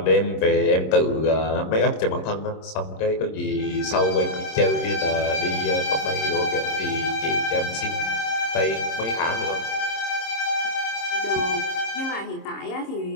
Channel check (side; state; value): right; late; 26 ms